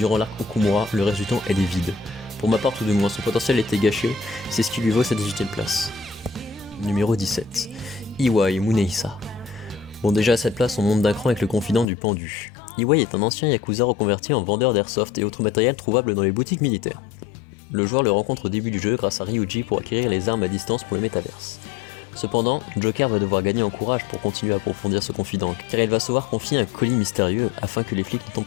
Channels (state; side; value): drops out; right; at 11.9 s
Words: l'arc Okumura, le reste du temps elle est vide. Pour ma part, tout du moins, son potentiel était gâché, c'est ce qui lui vaut sa 18ème place. Numéro 17, Iwai Munehisa. Bon, déjà à cette place, on monte d'un cran avec le confident du pendu. Iwai est un ancien yakuza reconverti en vendeur d'airsoft et autres matériels trouvables dans les boutiques militaires. Le joueur le rencontre au début du jeu grâce à Ryuji pour acquérir les armes à distance pour le métaverse. Cependant, Joker va devoir gagner en courage pour continuer à approfondir ce confident, car il va se voir confier un colis mystérieux afin que les flics ne tombent